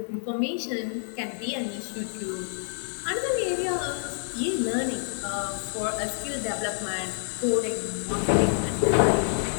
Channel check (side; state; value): right; silent; digital silence